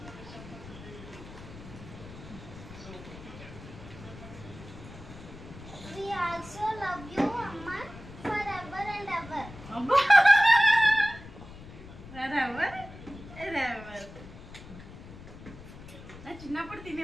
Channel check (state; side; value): noise; left; rumble, 15 dB below the sound